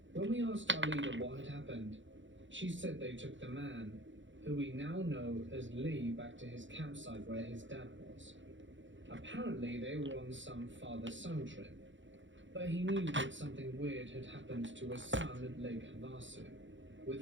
When we asked our leader what had happened, she said they took the man, who we now know as Lee, back to his campsite where his dad was. Apparently they were on some father-son trip, but he knew that something weird had happened to his son at Lake Havasu with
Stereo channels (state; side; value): late; left; 0.55 ms